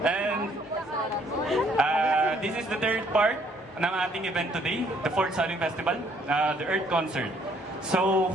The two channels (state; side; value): normal; both; correlation 0.64